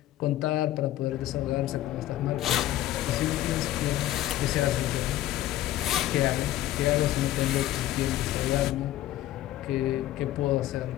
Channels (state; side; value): quieter; right; 14.1 dB